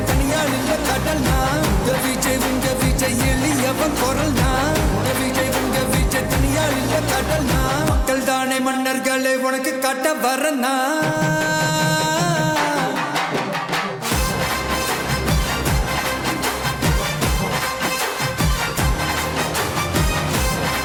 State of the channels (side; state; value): both; identical; correlation 1.00